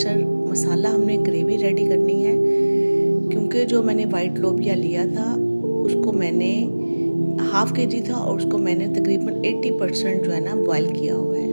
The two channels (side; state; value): both; inverted; correlation -1.00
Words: मसाला हमने ग्रेवी रेडी करनी है। क्योंकि जो मैंने वाइट लोबिया लिया था उसको मैंने ½ kg था और उसको मैंने तकरीबन 80% जो है ना बॉयल किया हुआ है।